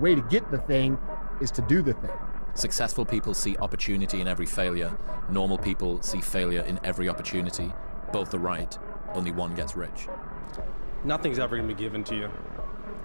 to get the thing is to do the thing. Successful people see opportunity in every failure. Normal people see failure in every opportunity. Both are right, only one gets rich. Nothing's ever going to be given to you.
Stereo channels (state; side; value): inverted; both; correlation -1.00